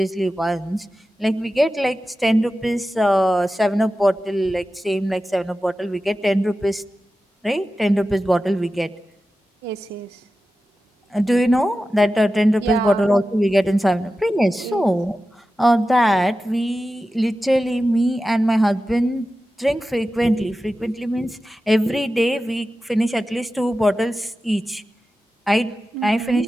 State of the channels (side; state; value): both; normal; correlation 0.93